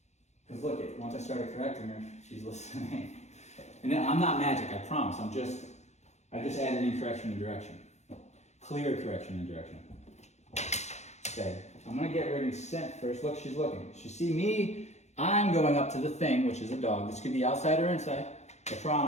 Because look, once I started correcting her, she's listening. And then, I'm not magic, I promise. I just added in correction and direction. Clear correction and direction. Okay, I'm gonna get ready to scent first. Look, she's looking. She see me, I'm going up to the thing, which is a dog. This could be outside or inside. I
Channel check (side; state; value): right; late; 0.33 ms